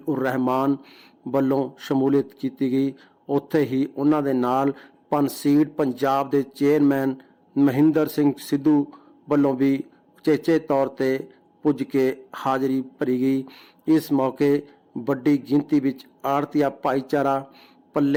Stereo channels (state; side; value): identical; both; correlation 1.00